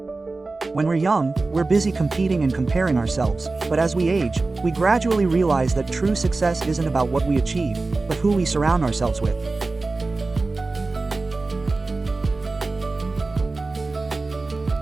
When we're young, we're busy competing and comparing ourselves, but as we age, we gradually realize that true success isn't about what we achieve, but who we surround ourselves with.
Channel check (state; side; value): quieter; left; 3.5 dB